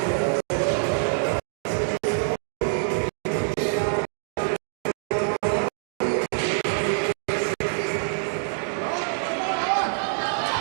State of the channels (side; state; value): left; silent; digital silence